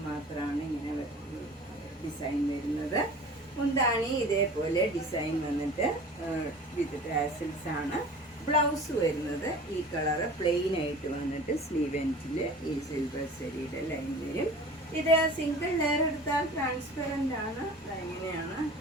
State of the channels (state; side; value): normal; both; correlation 0.41